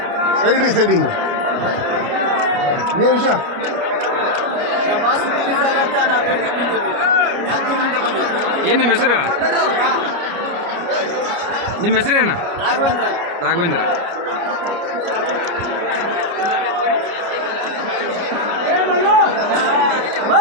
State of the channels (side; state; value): left; late; 29 ms